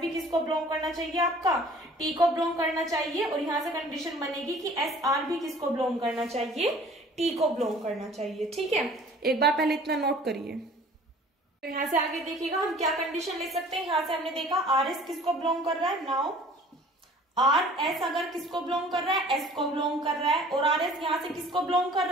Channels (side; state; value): both; normal; correlation 0.50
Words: भी किसको बिलोंग करना चाहिए, आपका T को बिलोंग करना चाहिए, और यहाँ से कंडीशन बनेगी कि SR भी किसको बिलोंग करना चाहिए, T को बिलोंग करना चाहिए। ठीक है, एक बार पहले इतना नोट करिए। तो यहाँ से आगे देखिएगा हम क्या कंडीशन ले सकते हैं। यहाँ से हमने देखा RS किसको बिलोंग कर रहा है, नाउ RS अगर किसको बिलोंग कर रहा है, S को बिलोंग कर रहा है, और RS यहाँ से किसको बिलोंग कर